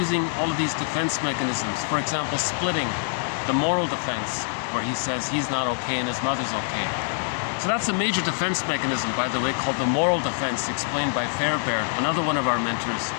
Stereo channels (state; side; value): silent; right; 58 dB below the other